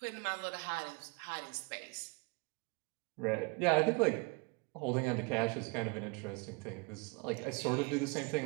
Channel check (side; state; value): left; quieter; 29.4 dB